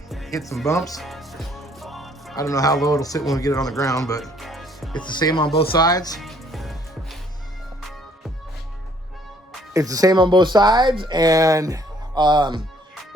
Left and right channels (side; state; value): both; normal; correlation 0.63